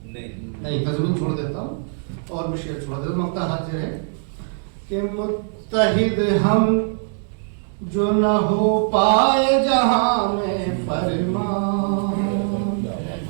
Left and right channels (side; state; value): left; silent; digital silence